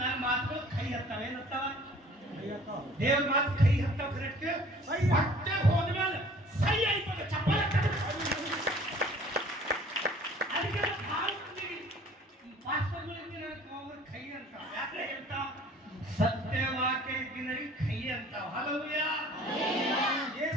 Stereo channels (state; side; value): normal; both; correlation 0.51